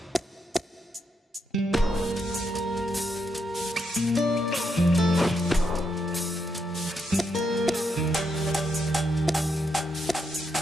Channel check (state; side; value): normal; both; correlation 0.80